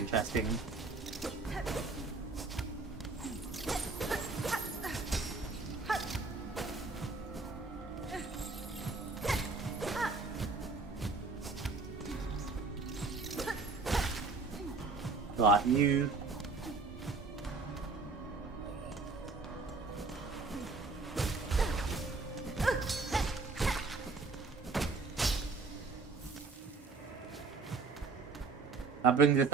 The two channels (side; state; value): left; quieter; 4.1 dB